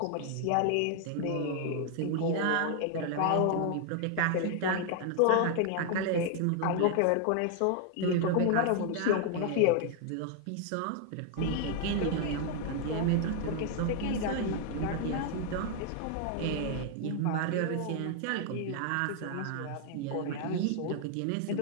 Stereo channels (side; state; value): both; different; correlation 0.00